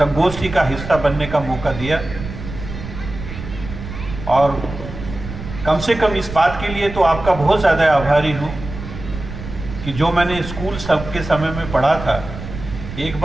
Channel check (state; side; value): noise; right; rumble, 10 dB below the sound